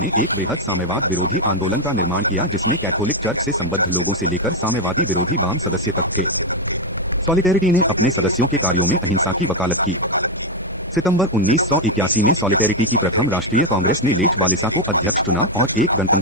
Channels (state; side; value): normal; both; correlation 0.03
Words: एक बृहद साम्यवाद विरोधी आंदोलन का निर्माण किया, जिसमें कैथोलिक चर्च से संबद्ध लोगों से लेकर साम्यवादी विरोधी वाम सदस्य तक थे। सॉलिडेरिटी ने अपने सदस्यों के कार्यों में अहिंसा की वकालत की। सितंबर 1981 में सॉलिडेरिटी की प्रथम राष्ट्रीय कांग्रेस ने लेच वालेसा को अध्यक्ष चुना और एक